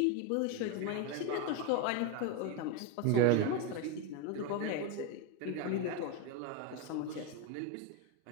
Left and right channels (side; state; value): both; different; correlation 0.03